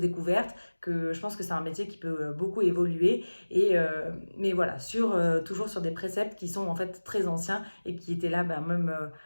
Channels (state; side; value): inverted; both; correlation -1.00